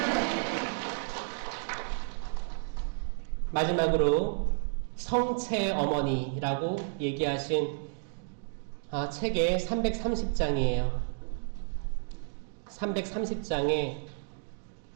마지막으로 성체 어머니라고 얘기하신 책의 330장이에요. 330장에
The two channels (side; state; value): left; silent; digital silence